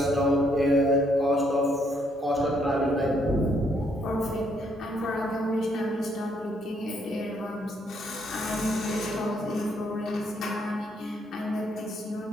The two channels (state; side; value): normal; both; correlation 0.71